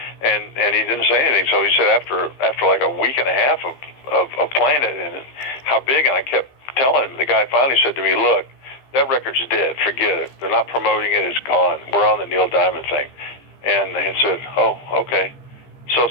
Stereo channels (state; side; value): late; right; 15 ms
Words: And he didn't say anything. So he said after like a week and a half of playing it and how big, and I kept telling him, the guy finally said to me, look, that record's dead. Forget it. They're not promoting it. It's gone. We're on the Neil Diamond thing. And he said, oh, okay. So